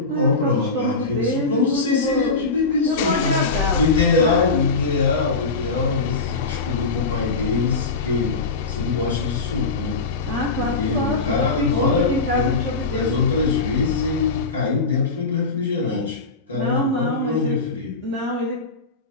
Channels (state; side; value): quieter; right; 3.8 dB